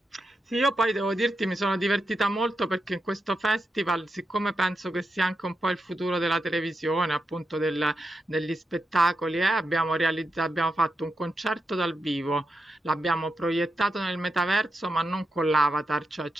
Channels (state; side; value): normal; both; correlation 0.86